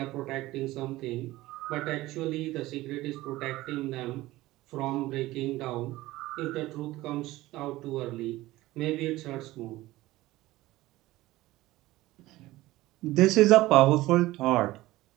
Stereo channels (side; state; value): left; quieter; 17.7 dB